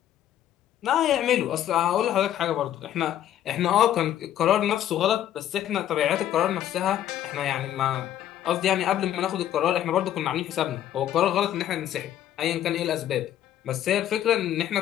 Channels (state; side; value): quieter; right; 11.5 dB